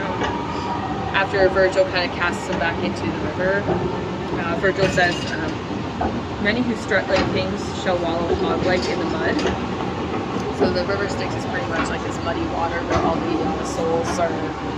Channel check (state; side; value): identical; both; correlation 1.00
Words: after Virgil kind of casts him back into the river, Virgil says, "Many who strut like kings shall wallow hog-like in the mud." So the river Styx is pretty much like this muddy water where all the souls are